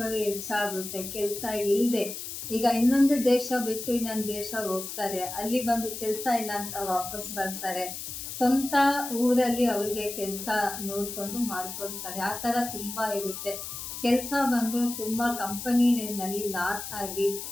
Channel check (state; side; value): noise; left; hiss, 8 dB below the sound